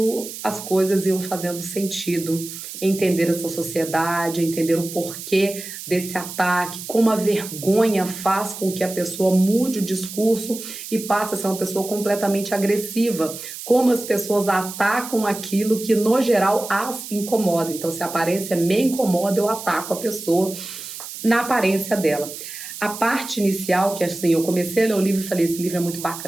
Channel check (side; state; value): right; noise; hiss, 10 dB below the sound